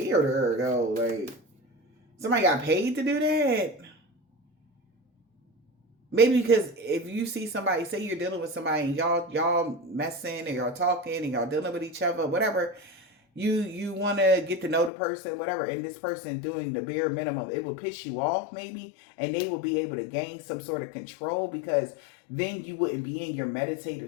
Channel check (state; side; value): drops out; right; at 14.9 s